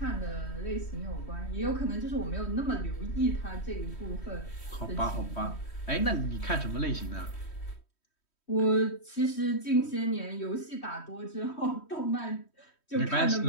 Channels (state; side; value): late; right; 3.1 ms